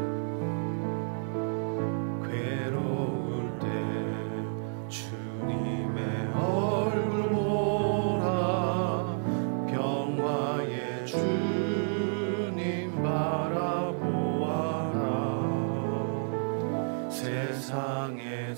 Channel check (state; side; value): silent; left; 58 dB below the other